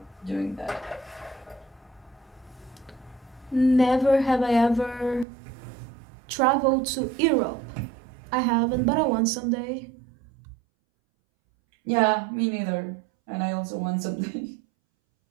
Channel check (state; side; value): drops out; left; at 5.2 s